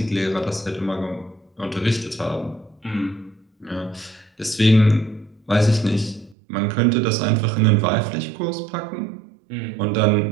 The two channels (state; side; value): drops out; left; at 6.4 s